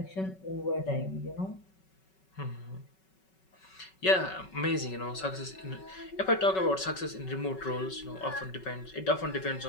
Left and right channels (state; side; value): late; right; 5.3 ms